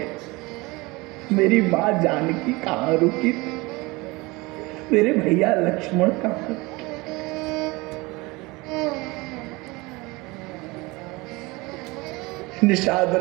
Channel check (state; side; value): quieter; left; 23.6 dB